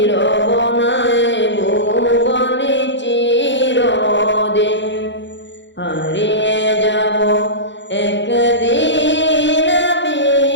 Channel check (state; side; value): late; right; 0.53 ms